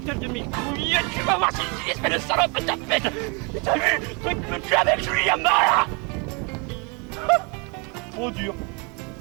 de mes couilles, tu vas voir si tu espèce de salope de tapette. T'as vu, truc me tue avec Julie Yamala. Trop dur.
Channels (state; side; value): quieter; left; 31.9 dB